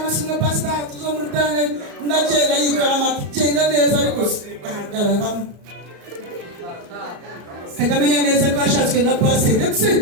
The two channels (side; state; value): left; late; 34 ms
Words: pasita tuzomurutane ndagenda yikora amagenda neza ariko ahagararamo kagamenya neza ko ashatswe na pasita ndetse